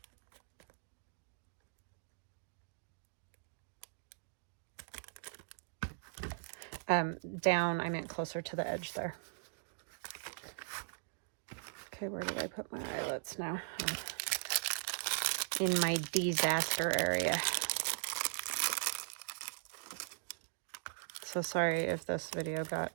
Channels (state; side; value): silent; left; digital silence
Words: down, I meant closer to the edge there. Okay, where do I put my eyelets now? Oh, in my disaster area. So sorry if this video got